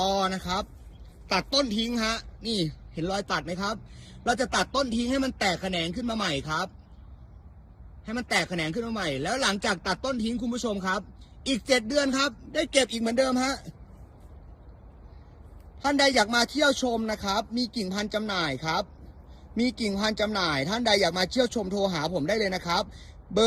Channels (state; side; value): identical; both; correlation 1.00